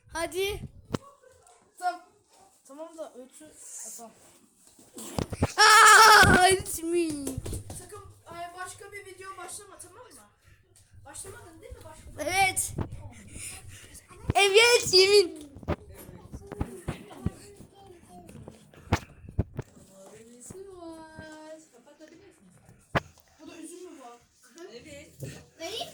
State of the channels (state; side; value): identical; both; correlation 1.00